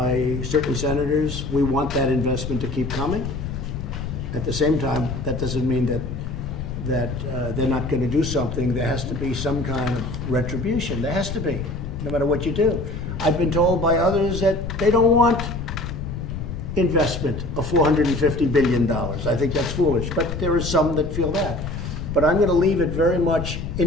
certain senators we want that investment to keep coming. At the same time, that doesn't mean that they're not going to do something. There has to be some kind of retribution. There has to be, no matter what you do. I've been told by others that they don't want investment of $450 billion. I think that's foolish, but there are some that feel that. But I'm going to leave it very much,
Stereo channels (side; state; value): left; noise; rumble, 7 dB below the sound